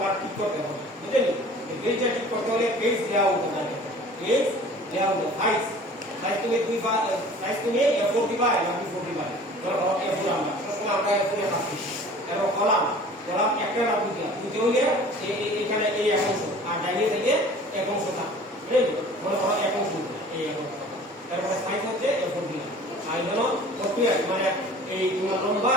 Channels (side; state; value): both; normal; correlation 0.46